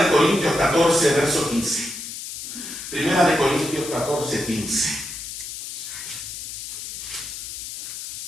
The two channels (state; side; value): noise; left; hiss, 8 dB below the sound